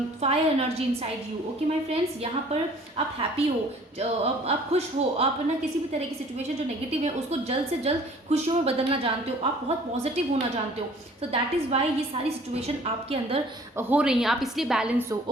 fire energy inside you, okay my friends. यहाँ पर आप हैप्पी हो, आप खुश हो, आप ना किसी भी तरह की सिचुएशन जो नेगेटिव है उसको जल्द से जल्द खुशियों में बदलना जानते हो, आप बहुत पॉजिटिव होना जानते हो। सो दैट इज़ वाई ये सारी सिचुएशन आपके अंदर हो रही हैं, आप इसलिए बैलेंस हो,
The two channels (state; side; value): normal; both; correlation 0.53